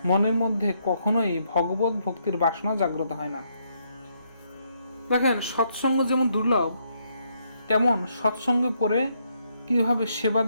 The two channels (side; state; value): both; inverted; correlation -0.74